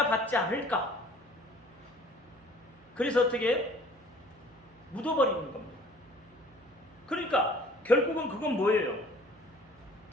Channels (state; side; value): noise; right; hum, 29 dB below the sound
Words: 받지 않을까? 그래서 어떻게 해요? 묻어버리는 겁니다. 그러니까 결국은 그건 뭐예요?